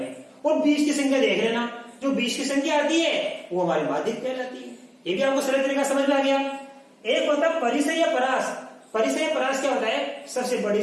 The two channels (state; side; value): identical; both; correlation 1.00